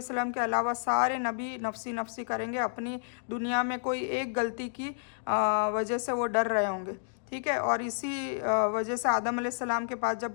वसल्लम के अलावा सारे नबी नफसी नफसी करेंगे। अपनी दुनिया में कोई एक गलती की वजह से वो डर रहे होंगे, ठीक है। और इसी वजह से आदम अलैहिस्सलाम के पास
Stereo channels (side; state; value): right; silent; digital silence